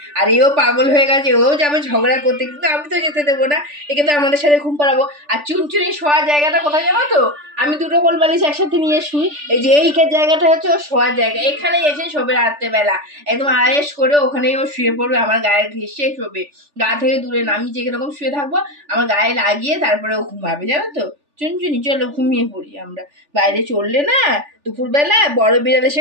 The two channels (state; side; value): late; left; 3.4 ms